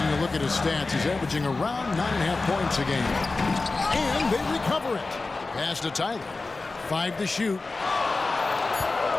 a look at his stats, he's averaging around 9.5 points a game. And they recover it. Pass to Tyler. 5 to shoot.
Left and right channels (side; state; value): right; quieter; 3.6 dB